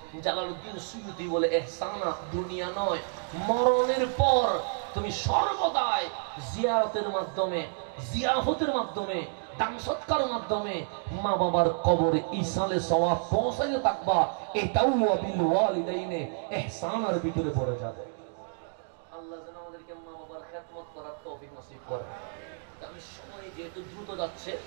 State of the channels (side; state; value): left; silent; digital silence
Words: জালালউদ্দিন সুয়ুতি বলে ইহসানা দুনিয়া নয়, মরণের পর তুমি সর্বদাই জিয়ারতের মাধ্যমে, জিয়াফতের মাধ্যমে, দান সৎকারের মাধ্যমে মা বাবার কবরে ইসালে সওয়াব পৌঁছাতে থাকবা। এটাও ওয়াবিল ওয়ালিদাইনে ইহসানার ভিতরে পড়ে যাবে। আল্লাহ যেন আমাদেরকে মা বাবার খেদমত করার তৌফিক নসিব করে। আমি সময় যেহেতু দ্রুত যাচ্ছে,